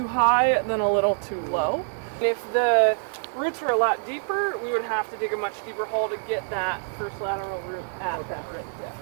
high than a little too low. If the roots were a lot deeper, we would have to dig a much deeper hole to get that first lateral root at that right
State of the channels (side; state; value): left; silent; digital silence